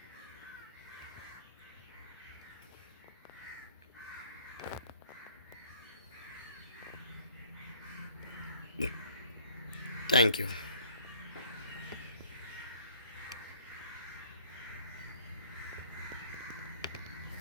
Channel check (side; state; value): both; inverted; correlation -0.56